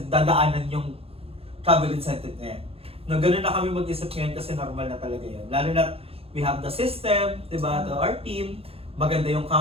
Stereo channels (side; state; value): left; late; 0.28 ms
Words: dadaanan yung travel incentive na yan. No, ganun na kami mag-isip ngayon kasi normal na talaga yan. Lalo na we have the system, diba, to our team, maganda yung